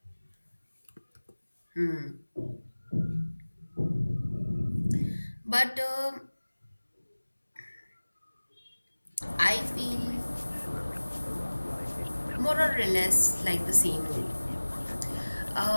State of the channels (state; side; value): inverted; both; correlation -1.00